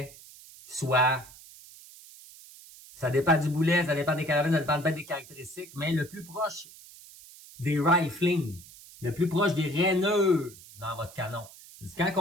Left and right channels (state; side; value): noise; right; hiss, 20 dB below the sound